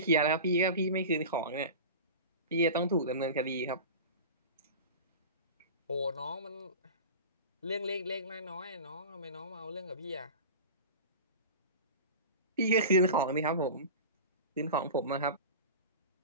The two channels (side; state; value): both; inverted; correlation -0.32